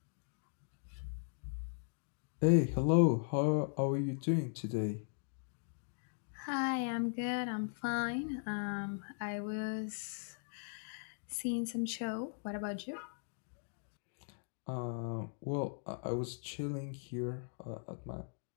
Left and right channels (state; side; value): silent; right; digital silence